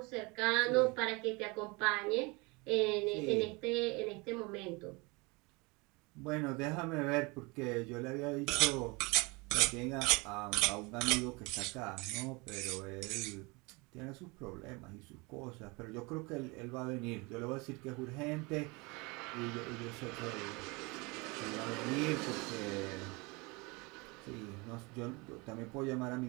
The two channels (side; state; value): left; quieter; 26.8 dB